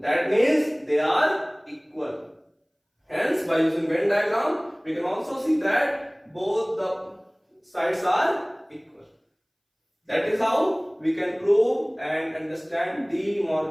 That means they are equal. Hence, by using Venn diagram, we can also see that both the sides are equal. That is how we can prove and understand De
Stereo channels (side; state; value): both; identical; correlation 1.00